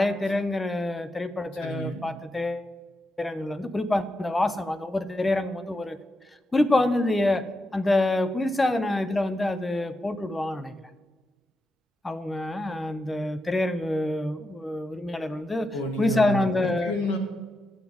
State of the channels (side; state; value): both; normal; correlation 0.87